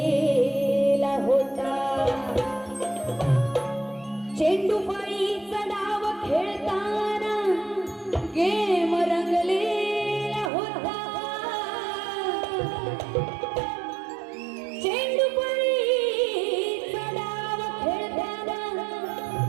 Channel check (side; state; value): left; drops out; at 10.5 s